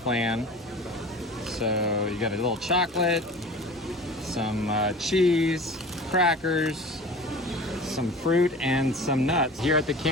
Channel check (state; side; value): normal; both; correlation 0.38